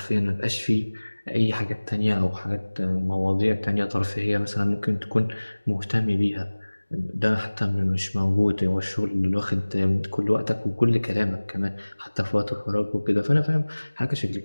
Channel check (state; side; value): inverted; both; correlation -1.00